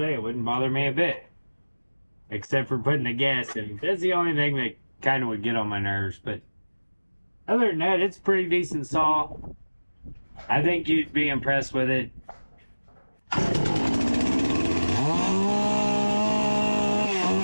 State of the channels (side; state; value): both; inverted; correlation -1.00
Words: It wouldn't bother me a bit, except for putting the gas in. That's the only thing that kind of would get on my nerves. But other than that, it's a pretty decent saw. I think you'd be impressed with it. I